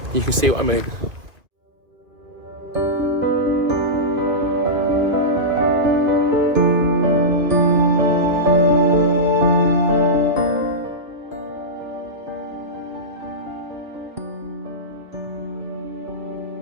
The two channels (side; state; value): left; late; 2.2 ms